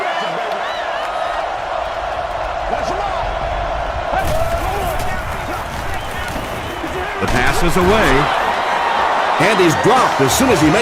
The pass is away, and he's dropped as soon as he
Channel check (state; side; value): identical; both; correlation 1.00